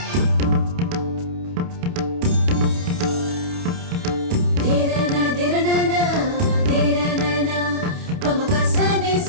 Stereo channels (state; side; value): late; left; 28 ms